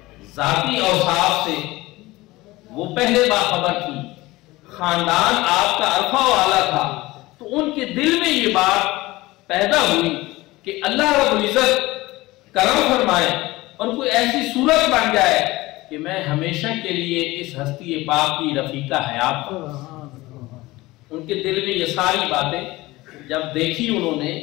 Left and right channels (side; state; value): right; quieter; 19.6 dB